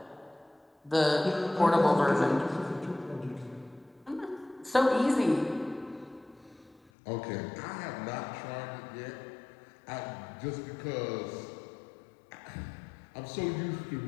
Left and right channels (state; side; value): drops out; right; at 6.9 s